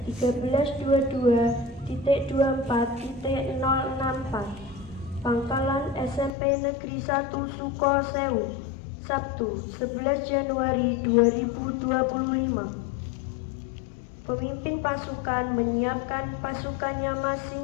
1322.24.064. Pangkalan SMP Negeri 1 Sukosewu, Sabtu 11 Januari 2025. Pemimpin pasukan menyiapkan pasukannya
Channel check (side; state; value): right; drops out; at 6.3 s